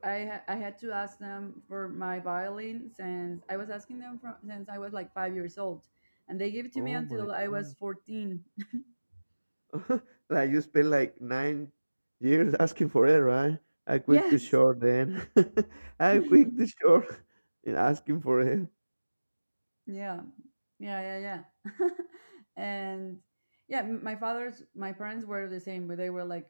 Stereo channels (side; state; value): both; inverted; correlation -1.00